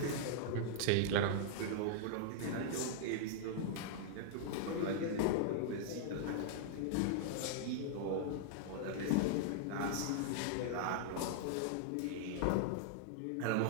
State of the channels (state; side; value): different; both; correlation -0.01